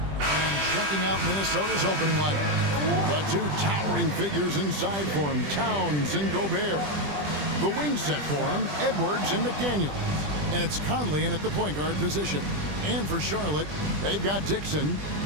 checking out Minnesota's opening lineup, the two towering figures inside for him, Towns and Gobert. The wing set for him, Edwards and McDaniels. And it's Conley in at the point guard position. And for Charlotte, they've got Dixon.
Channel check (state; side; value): late; left; 20 ms